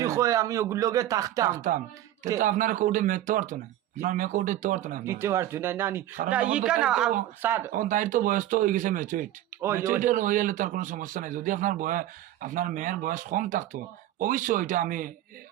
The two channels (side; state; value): left; quieter; 13.2 dB